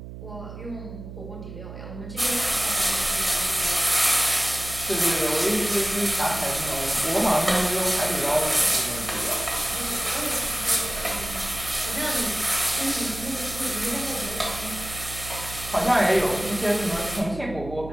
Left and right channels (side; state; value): right; noise; hum, 12 dB below the sound